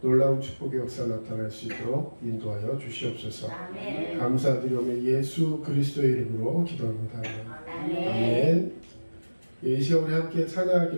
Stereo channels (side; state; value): both; inverted; correlation -1.00